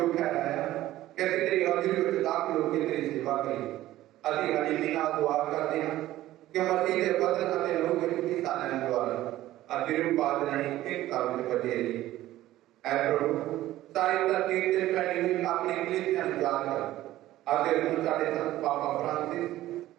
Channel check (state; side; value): quieter; left; 15.0 dB